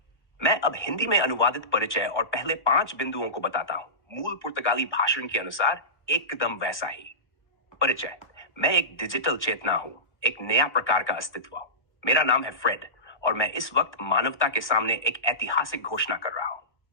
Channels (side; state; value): right; late; 1.2 ms